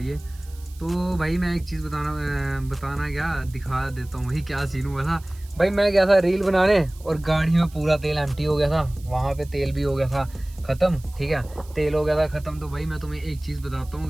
तो भाई मैं एक चीज़ बताना क्या दिखा देता हूँ भाई, क्या सीन हुआ था भाई। मैं गया था रील बनाने और गाड़ी में पूरा तेल एम्प्टी हो गया था, वहाँ पे तेल भी हो गया था ख़त्म। ठीक है, तेल हो गया था ख़त्म। तो भाई मैं तुम्हें एक चीज़ बताता हूँ,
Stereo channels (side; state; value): right; noise; hiss, 24 dB below the sound